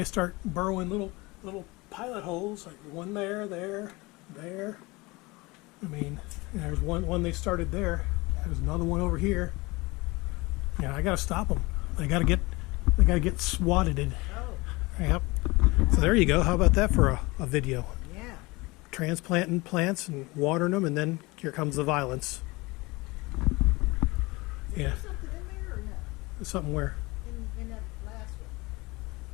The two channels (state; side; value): quieter; right; 23.4 dB